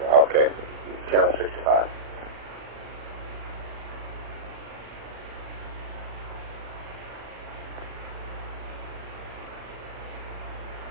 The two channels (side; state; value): left; late; 39 ms